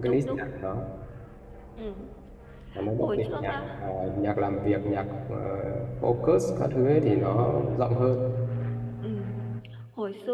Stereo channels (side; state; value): both; identical; correlation 1.00